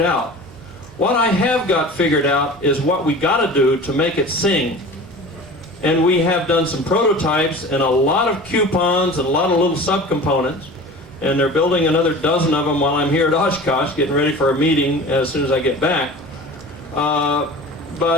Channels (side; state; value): both; normal; correlation 0.38